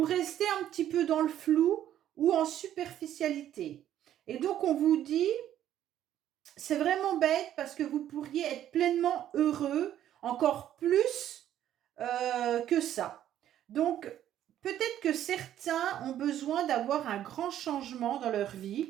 restez un petit peu dans le flou ou en superficialité. Et donc, on vous dit, c'est vraiment bête parce que vous pourriez être pleinement heureux, encore plus que ça. Donc, peut-être que certains ont besoin d'avoir un grand changement dans leur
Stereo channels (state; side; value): quieter; left; 11.4 dB